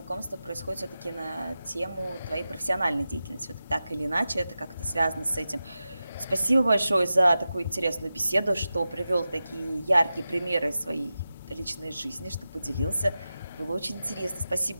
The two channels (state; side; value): inverted; both; correlation -0.93